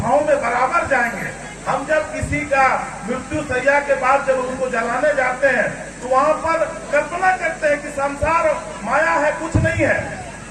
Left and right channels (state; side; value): identical; both; correlation 1.00